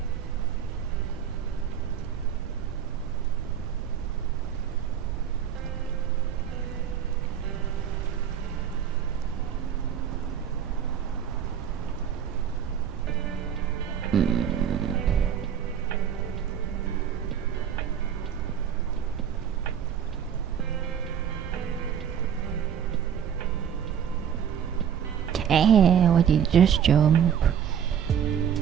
Why did you just jump?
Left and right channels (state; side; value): quieter; left; 8.6 dB